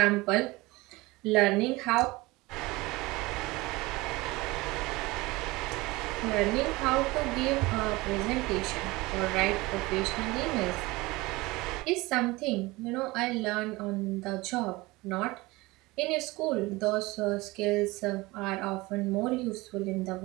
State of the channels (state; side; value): quieter; left; 21.8 dB